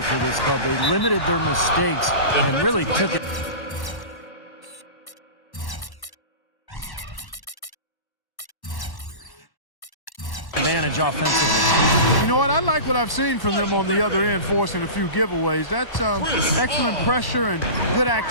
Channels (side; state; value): right; late; 1.1 ms